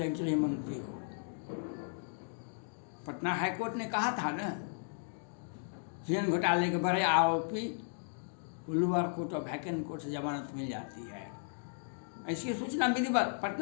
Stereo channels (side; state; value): right; silent; digital silence